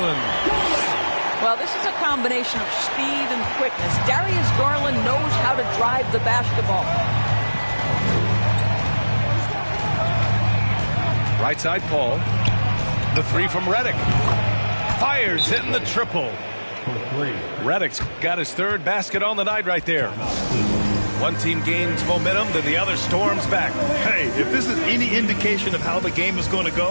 Well, this is a combination of speed and quickness. Darius Garland knows how to drive the basketball. Right side, Paul. The 3 from Redick. Fires, hitting the triple. Redick's got his 3rd basket on the night right there. One team gains momentum, then the other storms back. Hey, if this is any indication of how the game is going to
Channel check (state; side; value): inverted; both; correlation -1.00